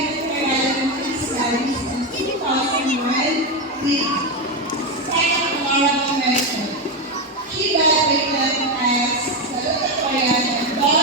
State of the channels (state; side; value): normal; both; correlation 0.11